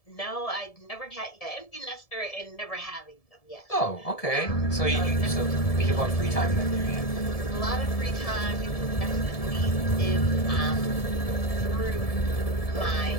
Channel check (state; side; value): late; right; 1.7 ms